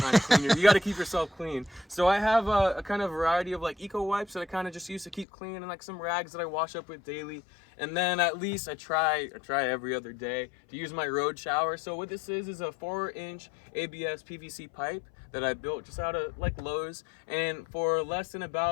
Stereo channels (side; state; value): right; drops out; at 5.2 s